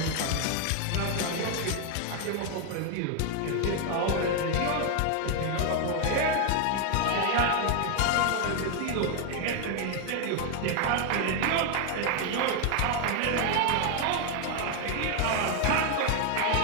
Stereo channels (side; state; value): both; different; correlation 0.01